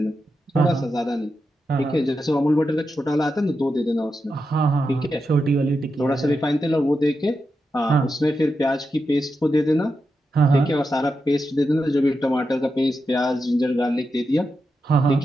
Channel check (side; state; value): both; normal; correlation 0.87